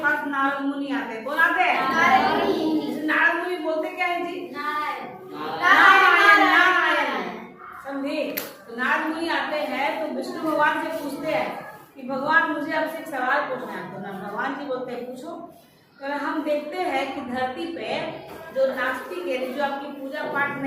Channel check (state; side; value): identical; both; correlation 1.00